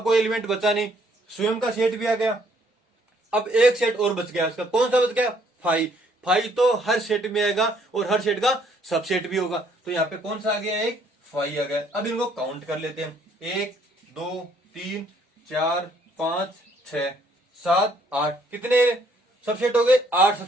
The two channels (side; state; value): both; normal; correlation 0.65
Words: कोई एलिमेंट बचा नहीं, स्वयं का सेट भी आ गया। अब एक सेट और बच गया, उसका कौन सा बच गया, फाई। फाई तो हर सेट में आएगा और हर सेट का सबसेट भी होगा। तो यहाँ पे कौन सा आ गया, एक फाई आ गया। अब इनको काउंट कर लेते हैं, 1 2 3 4 5 6 7 8, कितने सबसेट हो गए, 8